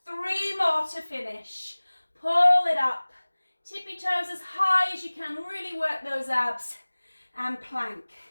3 more to finish. Pull it up. Tippy toes as high as you can. Really work those abs. And plank.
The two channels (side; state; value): both; inverted; correlation -1.00